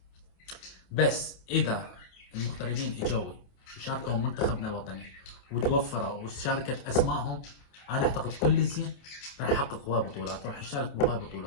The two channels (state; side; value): late; right; 28 ms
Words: بس اذا المغتربين اجوا وشاركوا منتخبنا الوطني وتوفروا وشاركت اسمائهم، انا اعتقد كل زين راح يحقق هواي بطولات، راح يشارك بهواي